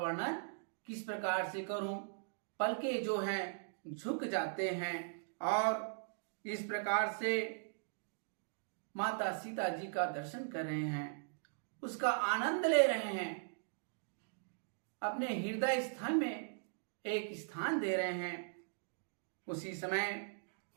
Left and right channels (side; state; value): left; silent; digital silence